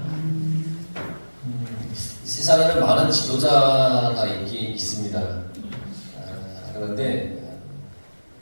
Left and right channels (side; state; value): both; inverted; correlation -1.00